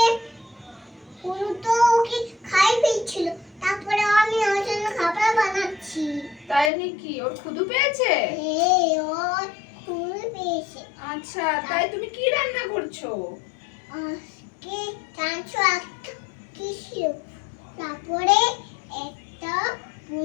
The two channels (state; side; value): drops out; right; at 6.7 s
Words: বুনু তো ওকে খাই ফেলছিল, তারপরে আমি ওর জন্য খাবার বানাচ্ছি। তাই নাকি? ওর ক্ষুধা পেয়েছে? ওর খুব পেয়েছে। আচ্ছা, তাই তুমি কি রান্না করছো? আজকে চাঁচু একটা কি ছিল, তারপরে একটা